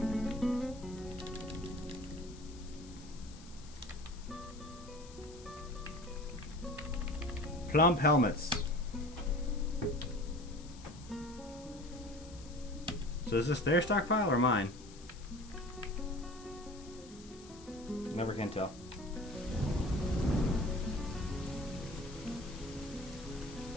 Plump helmets. So is this their stockpile or mine? Never can tell.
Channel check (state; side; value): noise; left; hiss, 20 dB below the sound